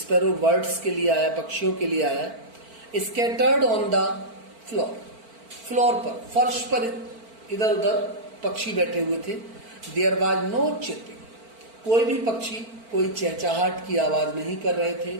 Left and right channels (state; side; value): late; left; 4.4 ms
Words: बर्ड्स के लिए आया, पक्षियों के लिए आया। Scattered on the floor, floor पर, फर्श पर इधर उधर पक्षी बैठे हुए थे। देयर वाज नो चिर्पिंग, कोई भी पक्षी कोई चहचहाट की आवाज नहीं कर रहे थे।